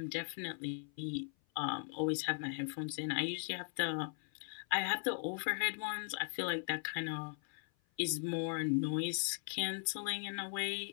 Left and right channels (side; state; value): right; silent; 52 dB below the other